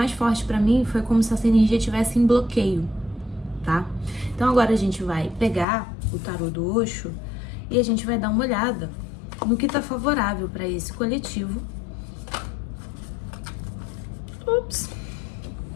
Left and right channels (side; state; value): right; drops out; at 5.7 s